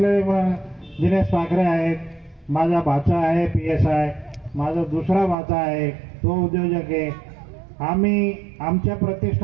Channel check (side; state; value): left; drops out; at 5.4 s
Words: दिनेश पाखरे आहेत, माझा भाचा आहे PSI, माझा दुसरा भाचा आहे तो उद्योजक आहे. आम्ही आमच्या